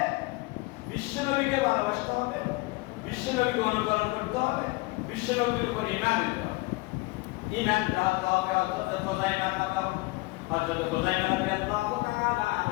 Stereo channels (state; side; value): quieter; right; 23.1 dB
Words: বিশ্বনবীকে ভালোবাসতে হবে বিশ্বনবীকে অনুকরণ করতে হবে বিশ্বনবীর উপর ঈমান আনতে হবে ঈমান রাখতে হবে হযরত খুযাইমা রাদিয়াল্লাহু তাআলা